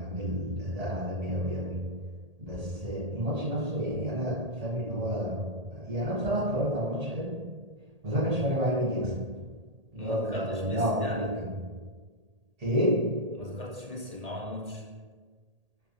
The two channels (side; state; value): left; late; 1.8 ms